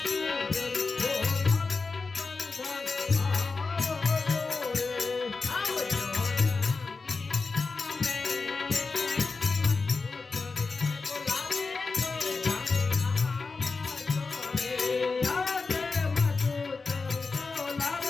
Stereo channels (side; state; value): right; quieter; 4.2 dB